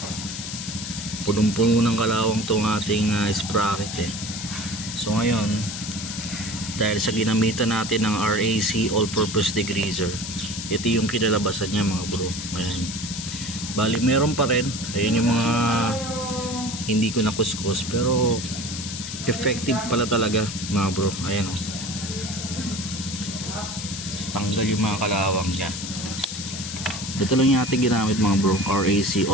punong-puno ng kalawang tong ating sprocket So ngayon, dahil sa ginamitan natin ng RAC all-purpose degreaser, ito yung kinalabasan niya mga bro. Ayan. Bali meron pa rin, ayun yung mga hindi ko nakuskus, pero effective pala talaga mga bro. Ayan o, tanggal yung mga kalawang niya. Ito lang yung ating ginamit mga bro, RAC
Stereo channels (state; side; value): noise; left; hiss, 7 dB below the sound